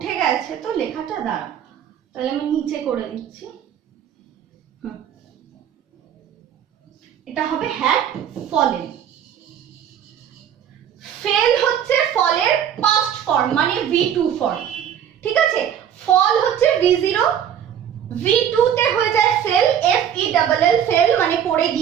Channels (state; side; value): quieter; left; 9.3 dB